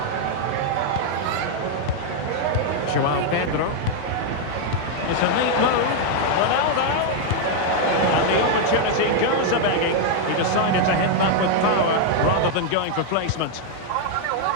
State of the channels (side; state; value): both; different; correlation 0.00